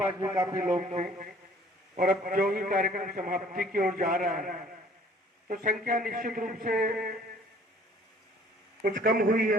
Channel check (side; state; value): both; normal; correlation 0.55